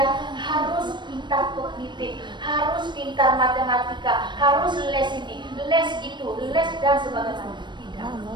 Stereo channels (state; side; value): late; left; 0.22 ms